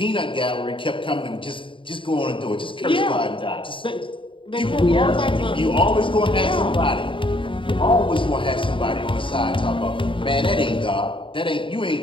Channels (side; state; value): right; late; 0.25 ms